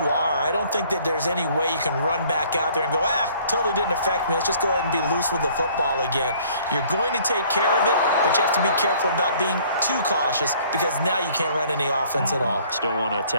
are. I don't think that there's any way you can run back out there and go, totally didn't affect me. Let's just go ahead and be loose with the football again. You're going to take care of it, but you have to be careful about being too cautious because now you can't run any offense at all. Still want to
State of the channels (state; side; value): inverted; both; correlation -0.57